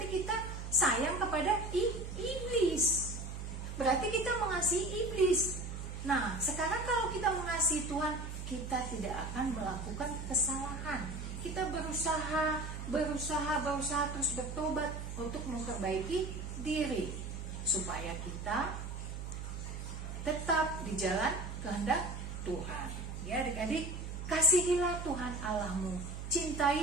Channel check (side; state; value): right; noise; hum, 7 dB below the sound